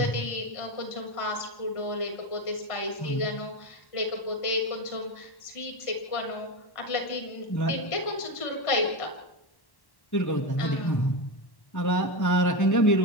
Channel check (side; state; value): right; late; 1.1 ms